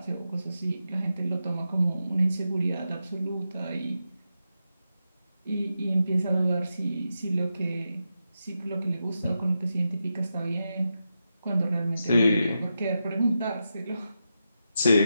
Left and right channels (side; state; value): both; inverted; correlation -0.88